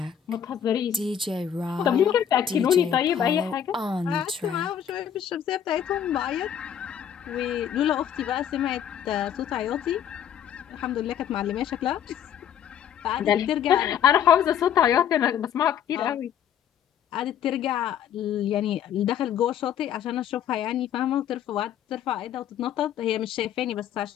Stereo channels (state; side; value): quieter; right; 9.3 dB